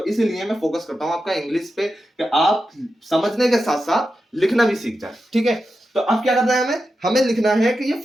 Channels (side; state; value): both; normal; correlation 0.90